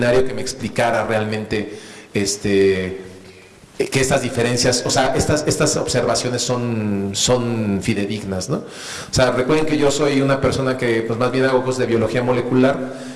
que me explicara realmente que estas diferencias, o sea, estas observaciones son fidedignas, ¿no? O sea, recuerden que yo soy una persona que pues más bien hago cosas de biología molecular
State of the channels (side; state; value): both; identical; correlation 1.00